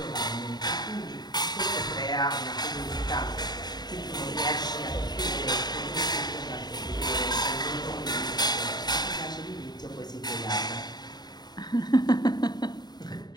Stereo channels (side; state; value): right; late; 0.20 ms